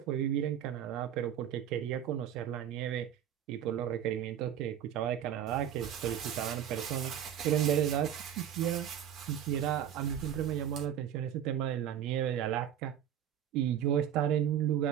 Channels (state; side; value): quieter; left; 10.1 dB